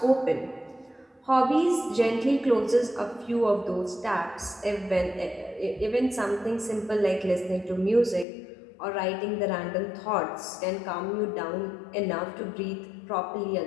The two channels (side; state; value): right; drops out; at 8.2 s